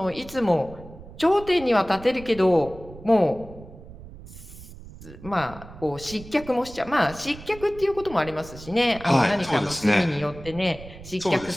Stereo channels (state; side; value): noise; right; rumble, 16 dB below the sound